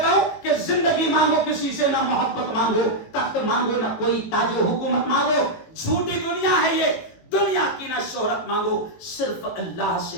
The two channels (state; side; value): late; right; 18 ms